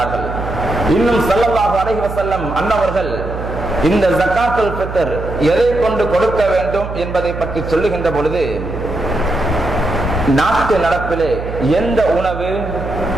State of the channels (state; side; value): noise; right; hum, 8 dB below the sound